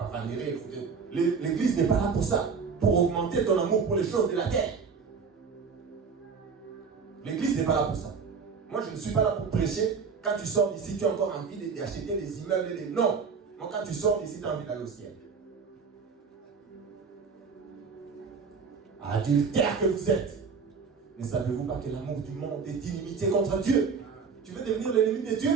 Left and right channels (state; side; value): quieter; left; 5.5 dB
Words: L'église n'est pas là pour ça, pour augmenter ton amour pour les choses de la terre. L'église n'est pas là pour ça. Moi, je ne suis pas là pour prêcher. Quand tu sors d'ici, tu as encore envie d'acheter des immeubles et des... Non. Moi, quand tu sors d'ici, tu as envie d'aller au ciel. Adultère que vous êtes. Ne savez-vous pas que l'amour du monde est inimitié contre Dieu? Tu veux devenir l'ennemi de Dieu?